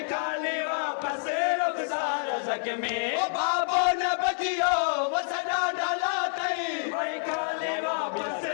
काली वापस रुखसार ज़ख्मी ओ बाबो न बचियो वसदा डाला तई वही काली वापस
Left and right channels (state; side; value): silent; right; 59 dB below the other